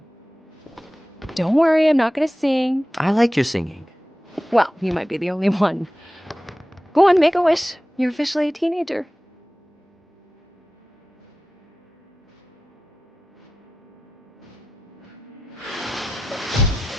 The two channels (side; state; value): both; normal; correlation 0.94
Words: Don't worry, I'm not gonna sing. I like your singing. Well, you might be the only one. Go on, make a wish. You're officially a teenager.